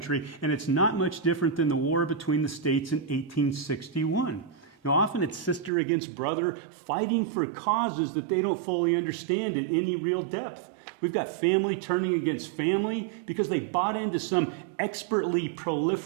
and it's not much different than the war between the states in 1861. Now, often it's sister against brother fighting for causes that they don't fully understand in any real depth. We've got family turning against family because they bought into some expertly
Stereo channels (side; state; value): left; drops out; at 5.7 s